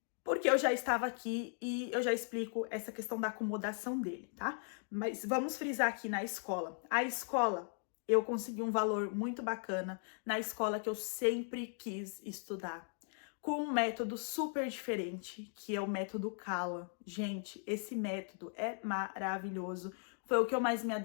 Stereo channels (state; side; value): silent; right; 53 dB below the other